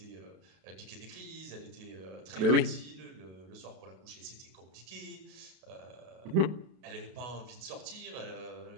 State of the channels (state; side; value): late; left; 32 ms